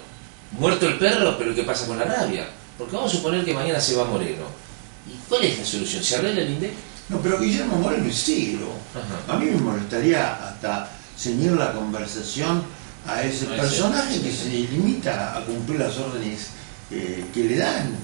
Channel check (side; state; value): left; silent; digital silence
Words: muerto el perro, pero ¿qué pasa con la rabia? Porque vamos a suponer que mañana se va Moreno. ¿Y cuál es la solución? ¿Se arregla el INDEC? No, pero Guillermo Moreno es ciego. A mí me molestaría hasta ceñir la conversación a ese personaje que se limita a cumplir las órdenes que le dan,